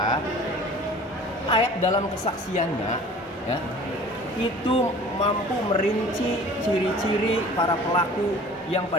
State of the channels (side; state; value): both; normal; correlation 0.46